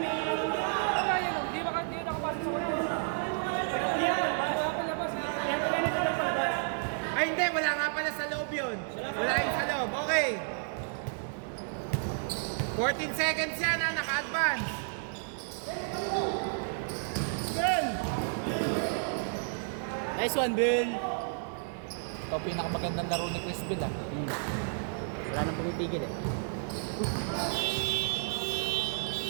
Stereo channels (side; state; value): left; silent; digital silence